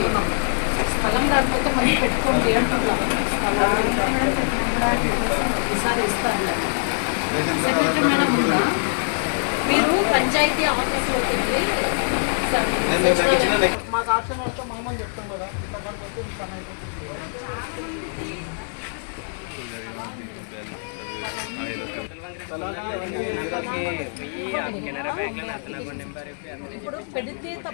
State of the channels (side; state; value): right; silent; digital silence